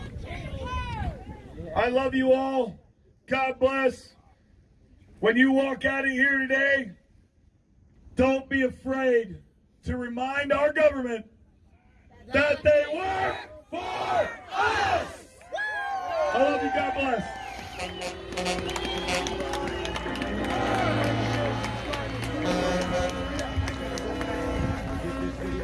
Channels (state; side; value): identical; both; correlation 1.00